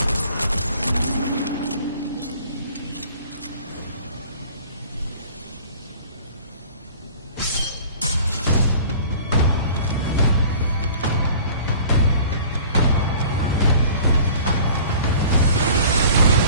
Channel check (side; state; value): both; inverted; correlation -0.47